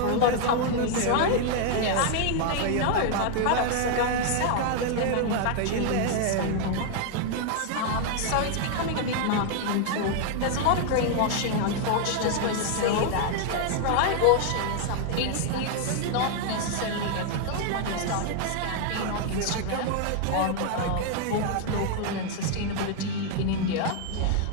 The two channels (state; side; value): different; both; correlation 0.00